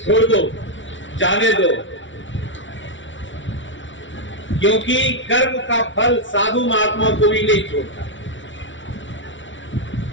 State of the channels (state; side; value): late; right; 0.55 ms